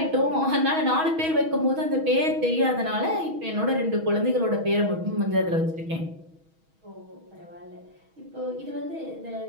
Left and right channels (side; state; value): left; late; 6.2 ms